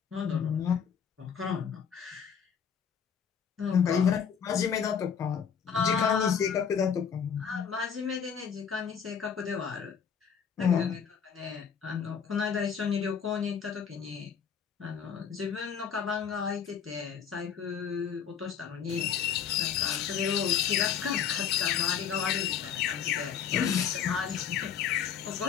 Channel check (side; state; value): right; quieter; 7.5 dB